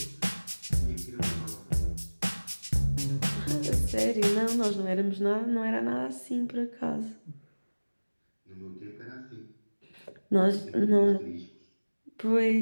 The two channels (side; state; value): both; inverted; correlation -1.00